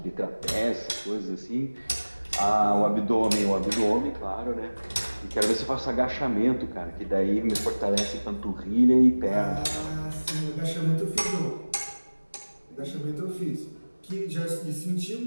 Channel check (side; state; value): both; inverted; correlation -1.00